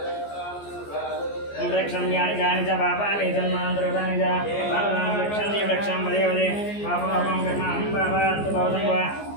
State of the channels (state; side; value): late; right; 14 ms